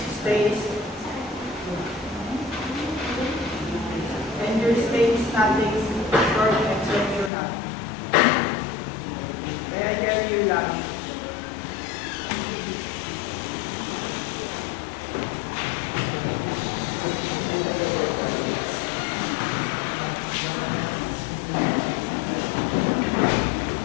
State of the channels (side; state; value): right; drops out; at 7.3 s